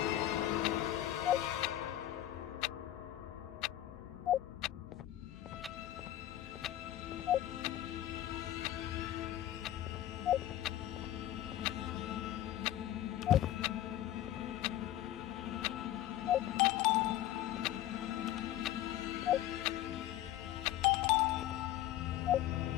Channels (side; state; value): right; quieter; 13.3 dB